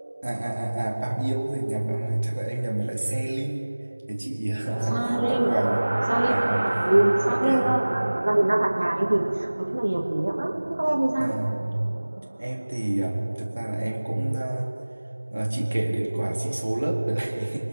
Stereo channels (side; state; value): both; inverted; correlation -1.00